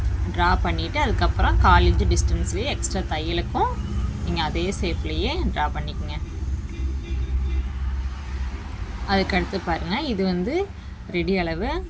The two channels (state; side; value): identical; both; correlation 1.00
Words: ட்ரா பண்ணிவிட்டு அதுக்கப்புறம் 1/4 இன்ச் டிஸ்டன்ஸ்லேயே எக்ஸ்ட்ரா தையலுக்கும் நீங்கள் அதே ஷேப்லேயே ட்ரா பண்ணிக்கோங்க. அதுக்கடுத்து பாருங்கள், இது வந்து ரெடி அளவு.